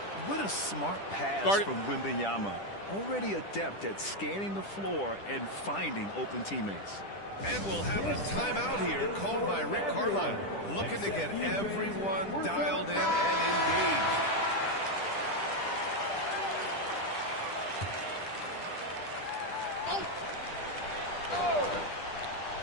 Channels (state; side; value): late; right; 10 ms